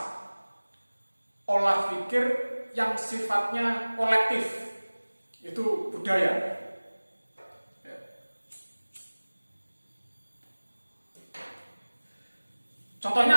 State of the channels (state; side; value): inverted; both; correlation -1.00